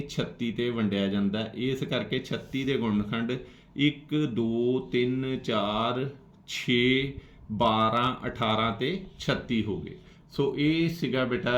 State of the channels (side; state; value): both; identical; correlation 1.00